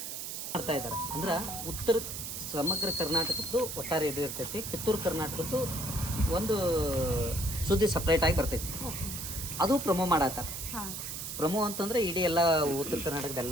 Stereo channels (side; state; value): right; noise; hiss, 6 dB below the sound